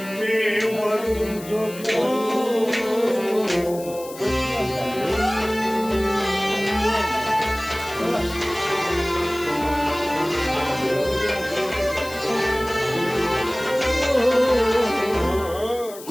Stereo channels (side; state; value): left; noise; hiss, 16 dB below the sound